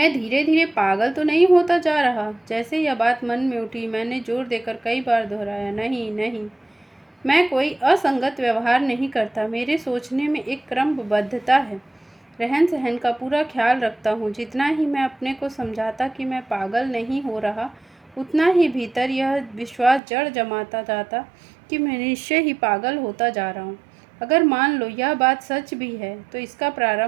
धीरे धीरे पागल तो नहीं होता जा रहा? जैसे यह बात मन में उठी, मैंने जोर देकर कई बार दोहराया, नहीं नहीं, मैं कोई असंगत व्यवहार नहीं करता। मेरे सोचने में एक क्रमबद्धता है। रहन सहन का पूरा ख्याल रखता हूँ। जितना ही मैं अपने को समझाता कि मैं पागल नहीं हो रहा, उतना ही भीतर यह विश्वास जड़ जमाता जाता कि मैं निश्चय ही पागल होता जा रहा हूँ। अगर मान लो यह बात सच भी है, तो इसका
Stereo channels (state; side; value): drops out; left; at 20.0 s